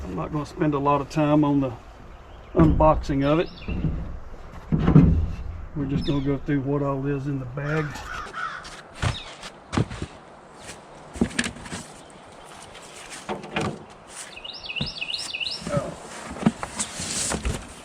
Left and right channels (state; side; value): identical; both; correlation 1.00